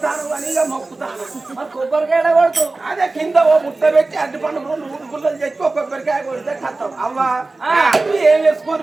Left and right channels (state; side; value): quieter; left; 3.4 dB